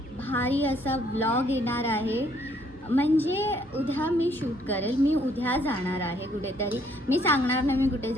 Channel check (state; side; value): normal; both; correlation 0.66